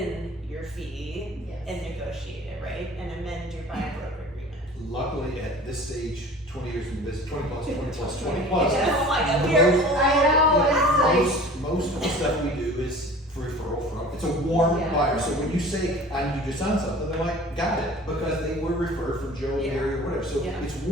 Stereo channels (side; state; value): both; normal; correlation 0.43